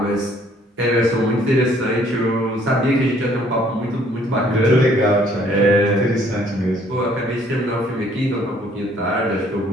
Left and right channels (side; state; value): both; normal; correlation 0.61